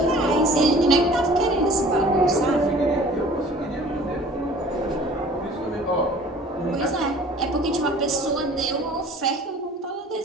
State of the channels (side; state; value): both; normal; correlation 0.48